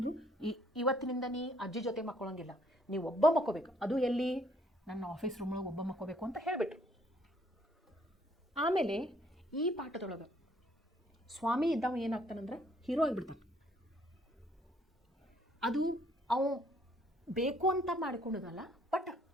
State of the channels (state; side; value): normal; both; correlation 0.65